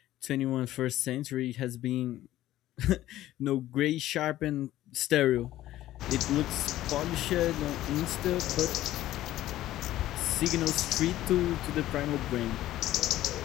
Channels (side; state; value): right; quieter; 14.4 dB